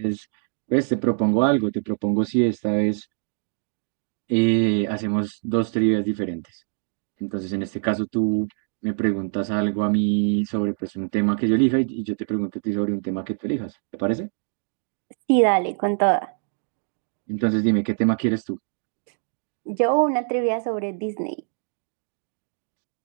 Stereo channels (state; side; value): silent; left; digital silence